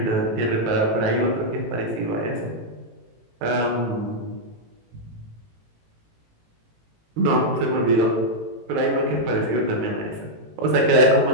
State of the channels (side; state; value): left; late; 18 ms